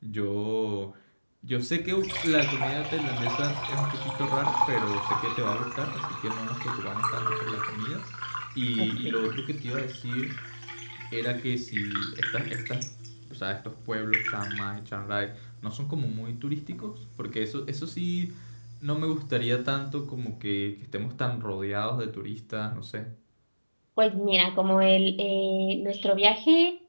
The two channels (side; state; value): both; inverted; correlation -1.00